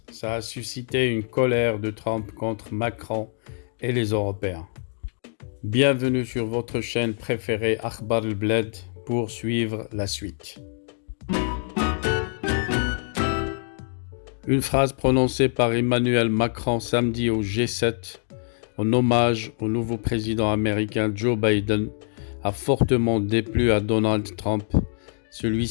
a suscité une colère de Trump contre Macron et les Européens. Bienvenue sur votre chaîne préférée Akhbar al-Bled pour suivre la suite. Une phrase prononcée par Emmanuel Macron samedi au G7 en hommage au nouveau président américain Joe Biden a fortement déplu à Donald Trump.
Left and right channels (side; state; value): right; silent; 62 dB below the other